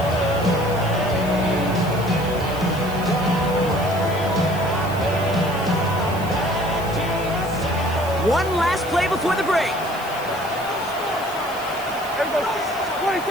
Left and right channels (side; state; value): left; noise; hiss, 17 dB below the sound